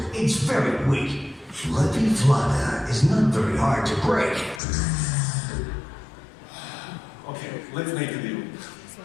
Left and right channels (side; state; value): right; drops out; at 4.6 s